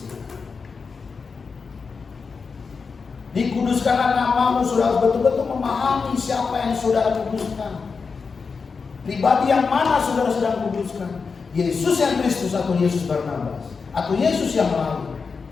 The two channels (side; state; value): right; quieter; 5.1 dB